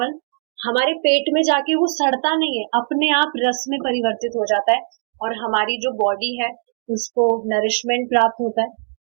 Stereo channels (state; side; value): silent; left; 66 dB below the other